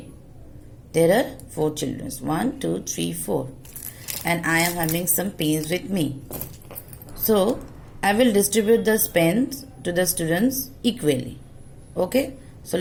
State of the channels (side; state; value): both; identical; correlation 1.00